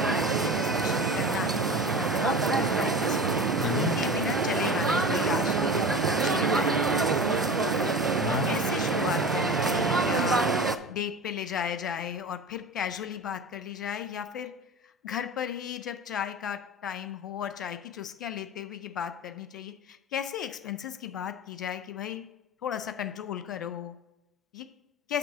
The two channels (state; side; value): normal; both; correlation 0.32